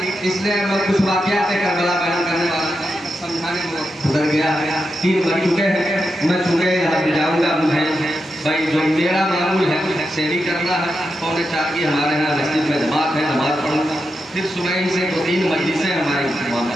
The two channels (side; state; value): both; normal; correlation 0.87